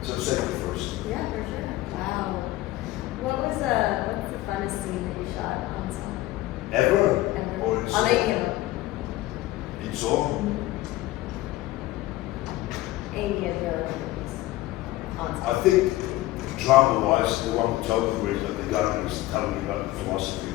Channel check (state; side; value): quieter; right; 17.2 dB